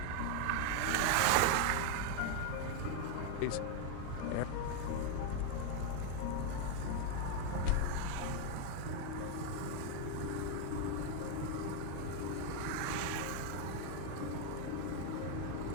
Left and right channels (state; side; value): different; both; correlation 0.01